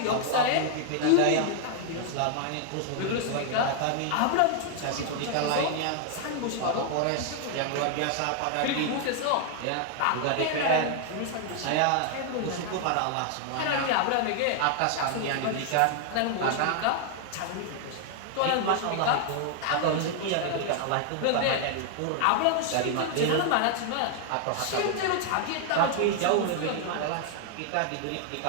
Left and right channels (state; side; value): different; both; correlation 0.00